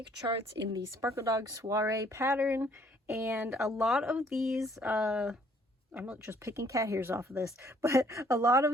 charts in the Sparkledog Soiree pattern, and a lot of these, I'm not just picking cat hairs off of this, but a lot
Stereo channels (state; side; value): normal; both; correlation 0.62